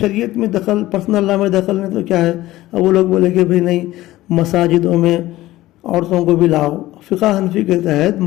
میں دخل، پرسنل لا میں دخل نہیں تو کیا ہے؟ اب وہ لوگ بولے کہ بھئی نہیں، مساجدوں میں عورتوں کو بھی لاؤ. فقہ حنفی کے تحت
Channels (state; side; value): quieter; right; 16.5 dB